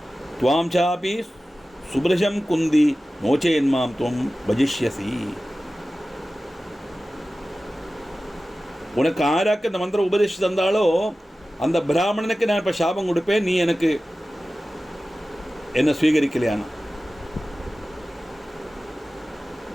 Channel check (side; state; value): both; normal; correlation 0.95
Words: துவாம் சாபி சுப்ரஜம் குந்தி நோச்சேன்மாம் துவம் பஜிஷ்யசி. உனக்கு ஆராக்கு இந்த மந்திரம் உபதேசி தந்தாலோ அந்த பிராமணனுக்கு நான் இப்போ சாபம் கொடுப்பேன், நீ எனக்கு என்ன ஸ்வீகரிக்கலையானா.